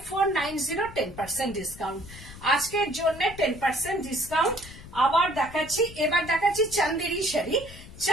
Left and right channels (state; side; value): noise; left; rumble, 16 dB below the sound